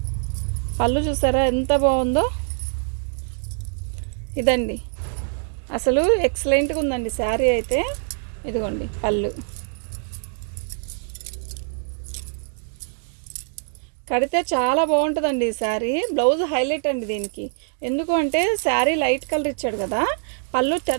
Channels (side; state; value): left; silent; digital silence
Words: పళ్ళు చూసారా ఎంత బాగుందో. ఇదండి అసలు ఎక్సలెంట్గా ఉందండి శారీ అయితే. ఇదిగోండి పళ్ళు. కడితే చాలా బాగుంటుందండి ఈ శారీ. బ్లౌజ్ హైలైట్ అండి దీనికి. ఎందుకు అంటే శారీ లైట్ కలర్ ఇచ్చాడు కదా, పళ్ళు